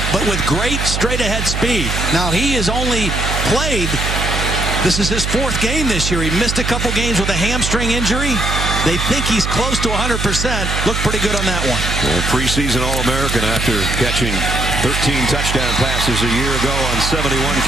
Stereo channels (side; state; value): right; noise; hum, 2 dB below the sound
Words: but with great straight ahead speed. Now, he has only played, this is his 4th game this year. He missed a couple games with a hamstring injury. They think he's close to 100%. Looked pretty good on that one. Well, preseason All-American after catching 13 touchdown passes a year ago on 71